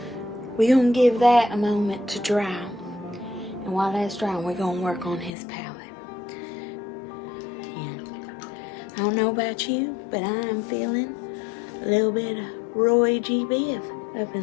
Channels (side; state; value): right; drops out; at 5.3 s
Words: We're gonna give that a moment to dry. And while that's drying, we're gonna work on his palette. Yeah. I don't know about you, but I'm feeling a little bit of Roy G. Biv up